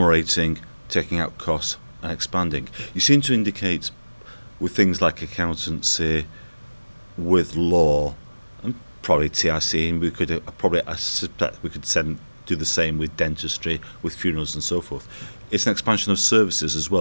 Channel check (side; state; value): both; inverted; correlation -1.00